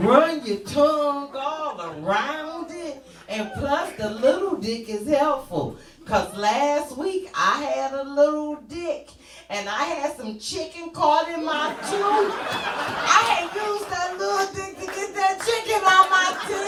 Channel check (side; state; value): both; identical; correlation 1.00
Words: your tongue all around it, and plus the little dick is helpful. Cause last week I had a little dick and I had some chicken caught in my tooth. I had used that little dick to get that chicken on my